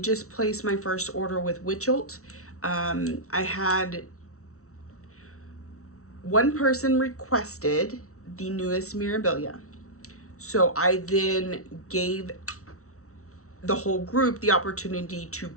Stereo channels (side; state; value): right; late; 0.64 ms